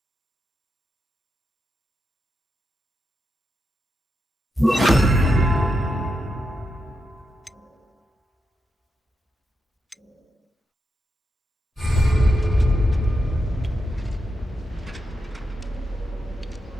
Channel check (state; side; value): normal; both; correlation 0.85